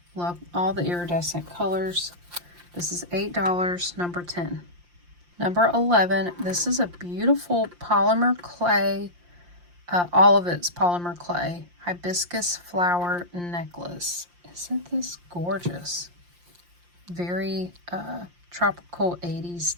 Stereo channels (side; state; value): left; late; 5.7 ms